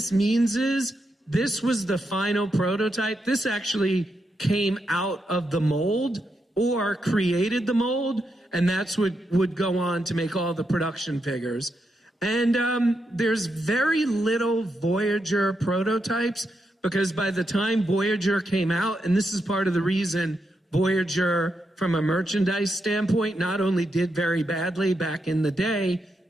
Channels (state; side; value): normal; both; correlation 0.83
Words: means is this was the final prototype. This actually came out of the mold or created the mold, and that's what would go on to make all the production figures. And there's very little Voyager prototypes, because by the time Voyager came out, and this is part of the reason Voyager, from a merchandise standpoint, not only did very badly back in the day,